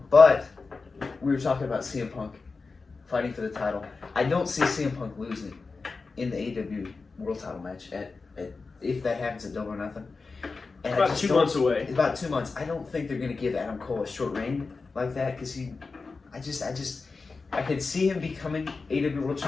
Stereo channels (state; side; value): quieter; right; 4.2 dB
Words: but we were talking about CM Punk fighting for the title. I don't see CM Punk losing in the AEW World Title match if that happens at Double or Nothing. And About 2 months away. About 2 months. I don't think they're going to give Adam Cole a short reign like that because I could see him becoming AEW World